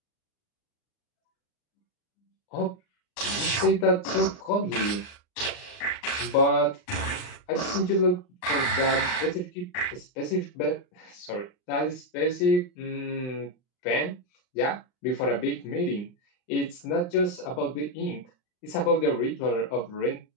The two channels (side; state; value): right; late; 39 ms